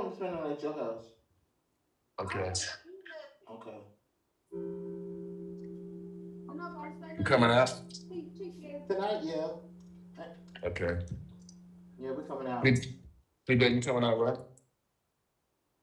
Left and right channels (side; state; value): both; identical; correlation 1.00